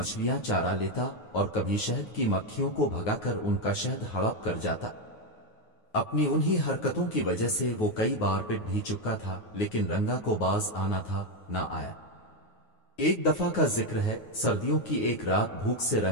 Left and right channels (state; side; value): late; right; 9.5 ms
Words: चारा लेता और कभी शहद की मक्खियों को भगाकर उनका शहद हड़प कर जाता। अपनी उन्हीं हरकतों की वजह से वो कई बार पिट भी चुका था, लेकिन रंगा को बाज आना था, ना आया। एक दफा का जिक्र है, सर्दियों की एक रात भूख से